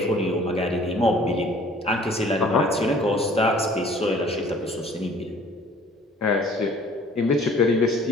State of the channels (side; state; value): both; normal; correlation 0.53